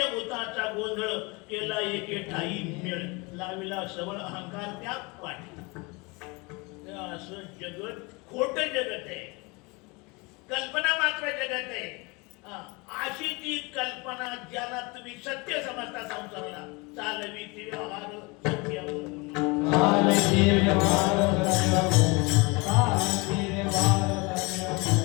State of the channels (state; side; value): quieter; right; 27.1 dB